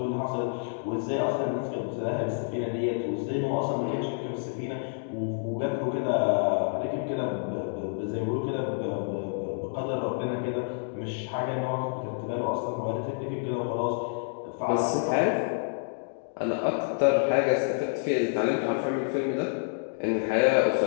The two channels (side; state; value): right; silent; digital silence